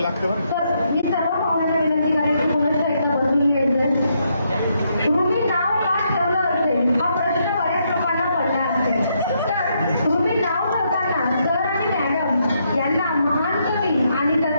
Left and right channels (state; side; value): inverted; both; correlation -0.77